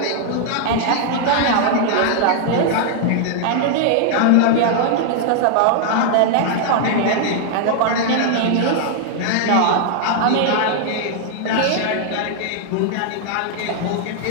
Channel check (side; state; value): both; different; correlation -0.01